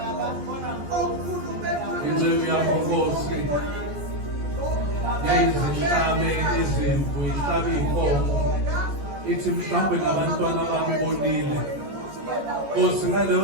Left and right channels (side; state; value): left; late; 14 ms